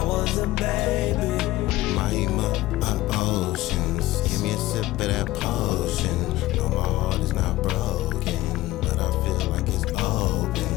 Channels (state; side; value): quieter; right; 17.3 dB